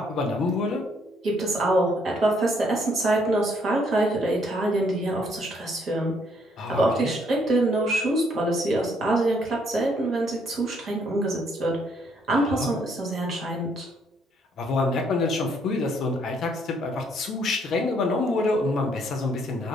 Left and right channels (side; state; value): both; normal; correlation 0.69